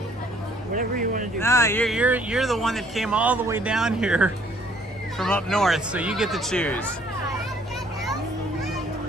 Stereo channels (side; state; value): both; normal; correlation 0.62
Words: Whatever you want to do. Nah, you're the one that came all the way down here from up north, so you get to choose.